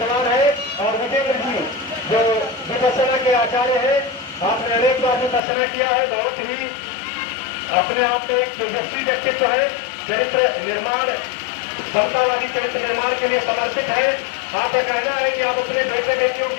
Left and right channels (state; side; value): drops out; right; at 5.4 s